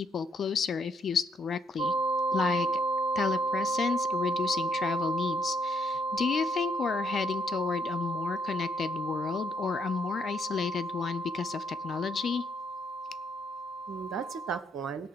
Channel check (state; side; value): normal; both; correlation 0.72